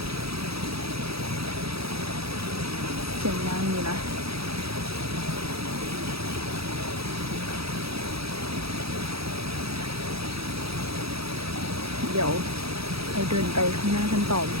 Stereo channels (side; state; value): left; late; 0.77 ms